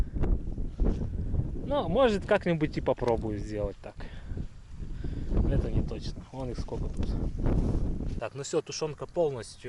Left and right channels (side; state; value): both; identical; correlation 1.00